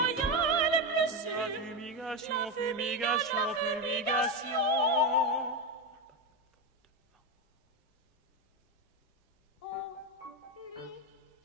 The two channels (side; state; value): both; normal; correlation 0.12